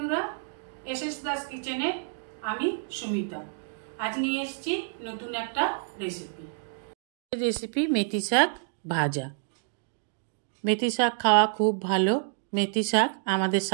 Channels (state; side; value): silent; left; digital silence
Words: एसएस दास किचेने आमी सुमिता आज निये एसेछि नतून एकटा रेसिपि मेथी शाक भाजा। मेथी शाक खावा खूब भालो। मेथी शाक आमादेर